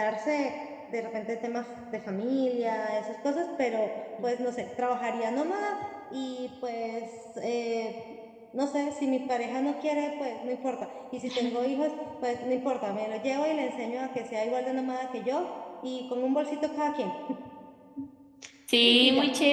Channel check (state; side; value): identical; both; correlation 1.00